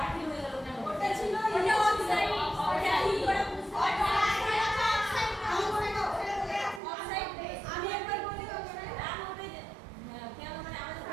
হয়ে গেল কেন? ওটা ছিল ওটা অফসাইড, ওটা কি করে বুঝতে অফসাইড। আমি একবার বলি ওকে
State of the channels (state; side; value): drops out; left; at 6.8 s